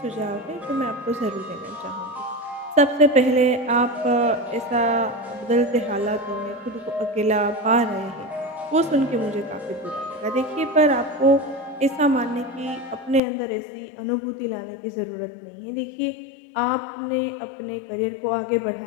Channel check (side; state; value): right; drops out; at 13.2 s